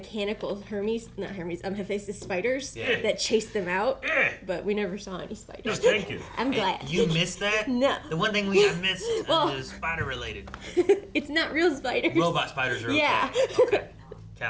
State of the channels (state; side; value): identical; both; correlation 1.00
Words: Hephaestus spiders Yeah. that chased them out, Yeah. but we never saw any No, spiders. thank you. I'm Hey, glad. you missed that? No. The one thing I missed Well- is spider related. It's not real spiders. Robot spiders are okay. Yeah. Okay.